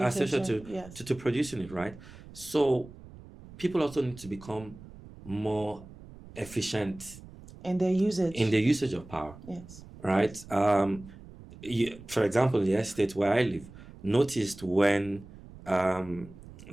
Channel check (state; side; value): noise; right; rumble, 18 dB below the sound